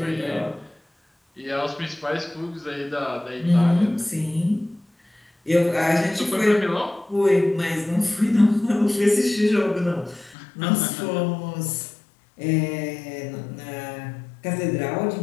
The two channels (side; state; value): right; drops out; at 10.4 s